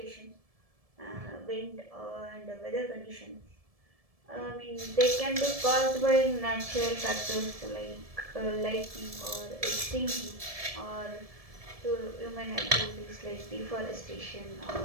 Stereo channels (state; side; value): late; left; 1.7 ms